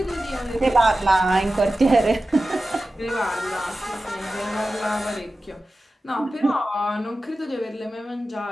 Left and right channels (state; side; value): normal; both; correlation 0.94